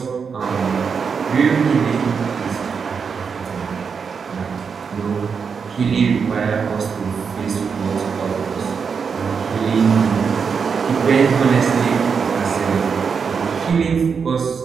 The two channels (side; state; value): left; quieter; 6.0 dB